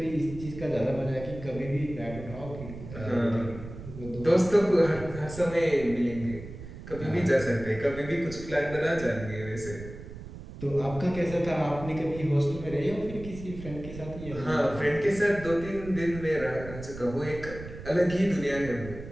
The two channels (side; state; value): right; noise; rumble, 12 dB below the sound